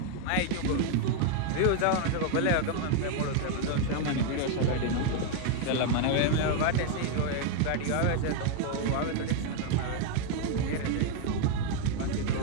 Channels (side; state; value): both; different; correlation 0.01